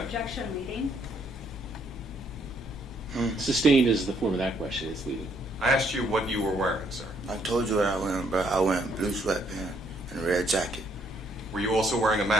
Objection, leading. Sustained is the form of that question. It's leading. I asked you what you were wearing, sir. I told you what I was wearing, bro. I was wearing blue sweatpants and a red jacket. Were you also wearing a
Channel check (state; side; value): normal; both; correlation 0.70